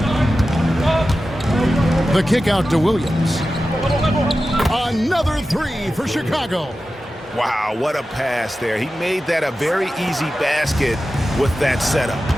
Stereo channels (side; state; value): both; normal; correlation 0.93